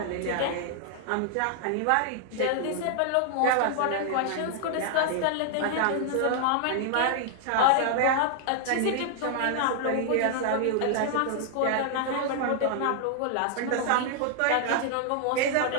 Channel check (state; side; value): different; both; correlation -0.01